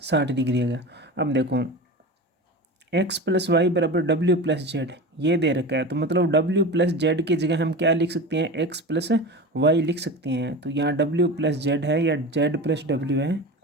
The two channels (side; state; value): both; normal; correlation 0.29